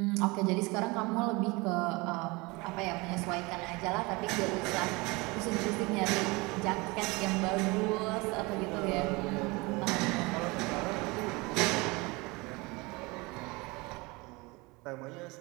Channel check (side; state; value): left; quieter; 25.0 dB